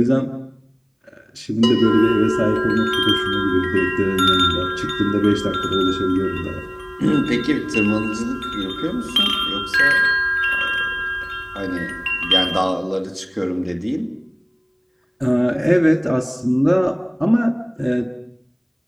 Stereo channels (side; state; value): both; identical; correlation 1.00